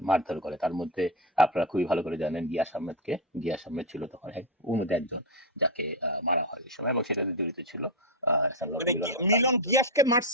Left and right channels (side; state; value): both; normal; correlation 0.07